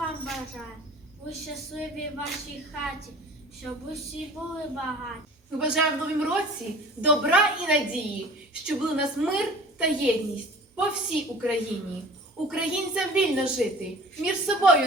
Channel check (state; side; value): normal; both; correlation 0.44